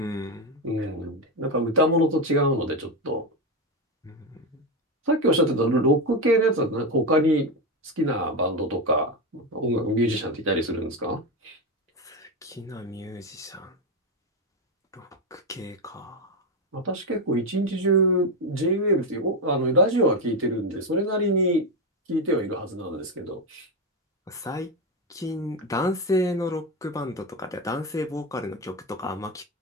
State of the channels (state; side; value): normal; both; correlation 0.12